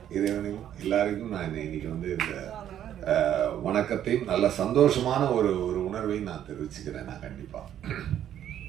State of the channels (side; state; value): left; quieter; 10.7 dB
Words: இறைவனையும் எல்லாருக்கும் நான் இன்னைக்கு வந்து இந்த வணக்கத்தையும் நல்ல சந்தோஷமான ஒரு உணர்வையும் நான் தெரிவிச்சுக்கிறேன். நான் கண்டிப்பாக